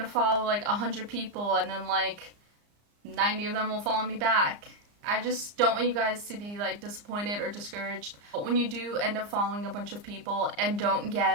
follow like 100 people and then like 90 of them will follow me back. I just don't want you guys to be like disappointed or discouraged when you do end up following a bunch of people and don't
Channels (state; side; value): late; left; 34 ms